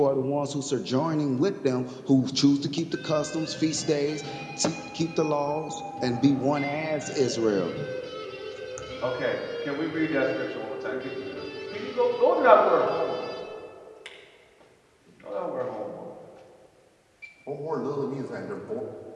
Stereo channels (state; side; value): identical; both; correlation 1.00